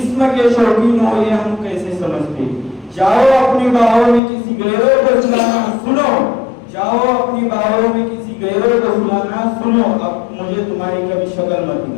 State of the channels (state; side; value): drops out; right; at 4.2 s